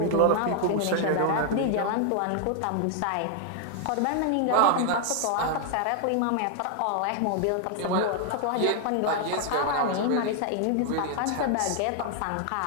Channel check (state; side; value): different; both; correlation 0.00